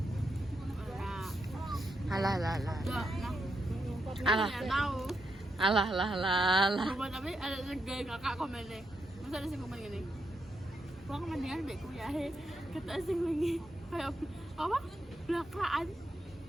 Alah. Tapi ada segala kakak komennya. Masa ada sing komen gini. Gua mendingan mbek kuyahe kata sing wingi kayak apa? Blakraan.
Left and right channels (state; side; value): normal; both; correlation 0.83